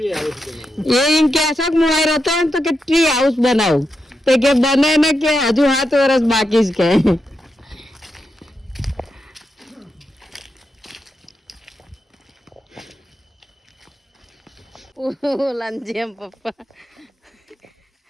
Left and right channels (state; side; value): normal; both; correlation 0.86